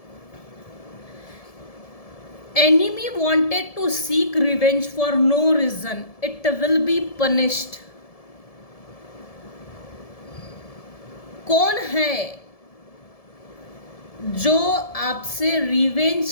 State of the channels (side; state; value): right; late; 1.7 ms